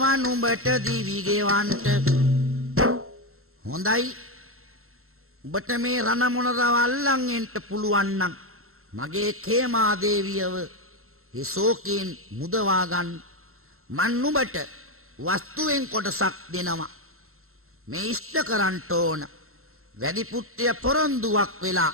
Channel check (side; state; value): left; late; 0.62 ms